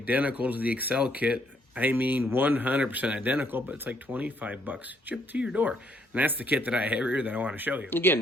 to the Accel kit. I mean 100% identical, but it's like 25 bucks shipped to your door. And that's the kit that I have here that I want to show you.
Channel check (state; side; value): normal; both; correlation 0.70